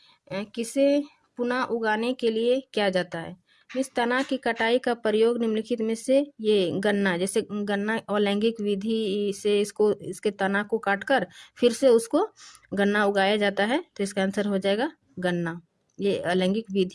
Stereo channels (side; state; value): both; identical; correlation 1.00